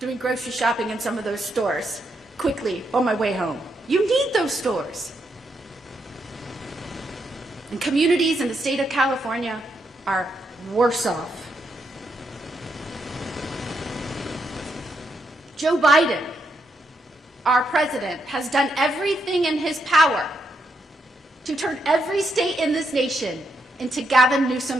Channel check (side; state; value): both; normal; correlation 0.80